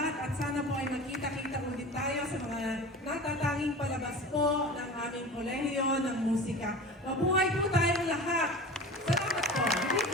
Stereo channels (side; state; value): both; normal; correlation 0.34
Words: at sana po ay magkita-kita ulit tayo sa mga natatanging palabas po ng aming kolehiyo ng musika. Mabuhay po tayong lahat! Salamat po!